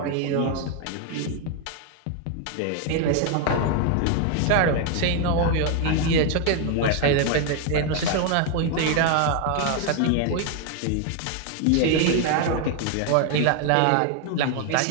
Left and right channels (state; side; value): different; both; correlation 0.01